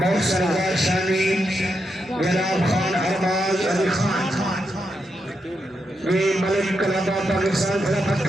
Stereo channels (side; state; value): both; normal; correlation 0.84